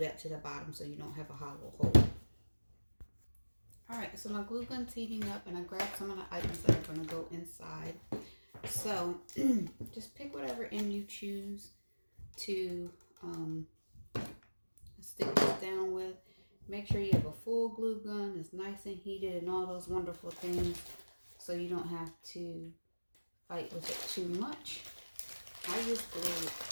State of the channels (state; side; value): inverted; both; correlation -1.00